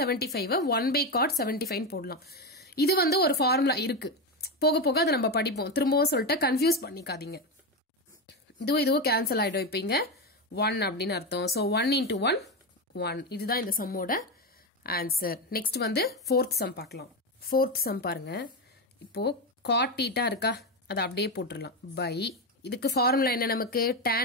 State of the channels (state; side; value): normal; both; correlation 0.13